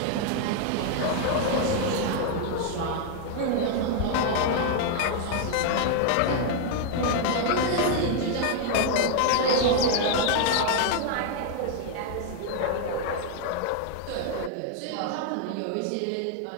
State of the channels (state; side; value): different; both; correlation 0.00